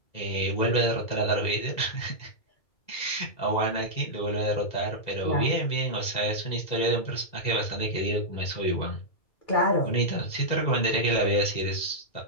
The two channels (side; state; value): right; late; 2.0 ms